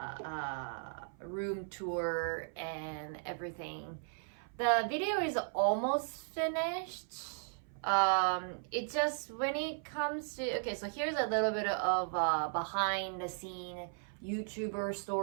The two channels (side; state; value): left; silent; 54 dB below the other